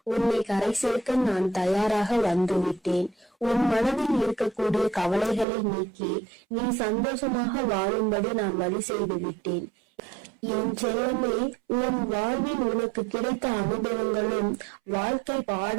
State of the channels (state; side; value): drops out; left; at 5.5 s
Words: உன்னை கரை சேர்க்க நான் தயாராக வந்துவிட்டேன். உன் மனதில் இருக்கக்கூடிய கவலைகளை நீக்கி நீ சந்தோஷமாக வாழும்படி நான் வழி செய்து விட்டேன். என் செல்லமே, உன் வாழ்வில் உனக்கு கிடைத்த அனுபவங்களும் வாழ்க்கை